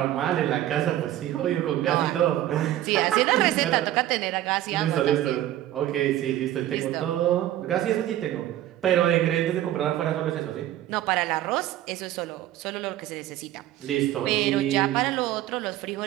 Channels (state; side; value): quieter; left; 13.4 dB